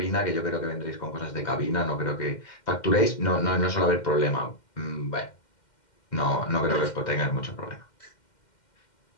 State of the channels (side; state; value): right; late; 2.1 ms